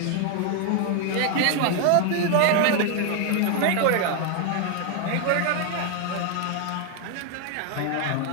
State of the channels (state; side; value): different; both; correlation 0.00